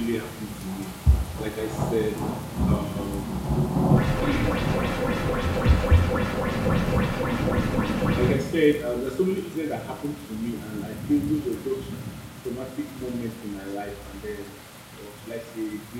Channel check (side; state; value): both; identical; correlation 1.00